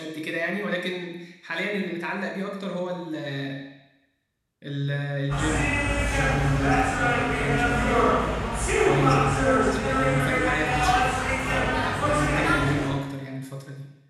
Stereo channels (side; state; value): both; identical; correlation 1.00